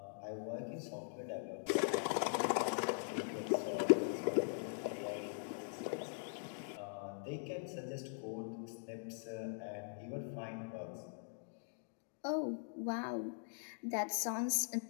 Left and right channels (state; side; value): silent; right; digital silence